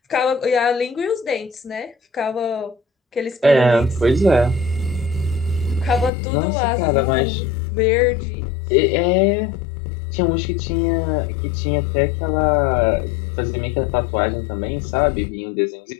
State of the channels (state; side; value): drops out; right; at 6.1 s